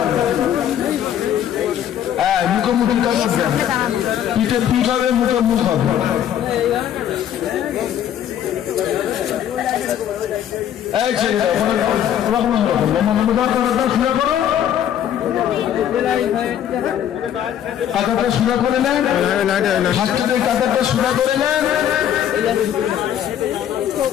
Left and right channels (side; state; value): right; quieter; 10.2 dB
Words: হ্যাঁ মুখোমুখি কাতার দেন, পিঠে পিঠ হবে, মুখে মুখ হবে। এই ছেলেরা লম্বালম্বি কাতারটা সোজা করো, কাতারটা সোজা করে নেন, হাতটাকে কাতারটা সোজা করে নেন।